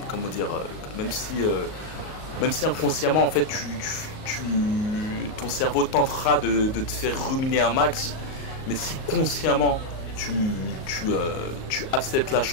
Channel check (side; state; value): right; late; 38 ms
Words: inconsciemment en fait ton cerveau tentera de te faire ruminer un max, mais si consciemment tu acceptes la